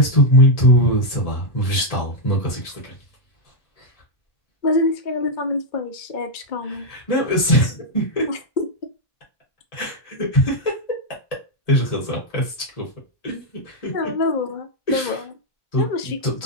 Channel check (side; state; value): right; late; 1.8 ms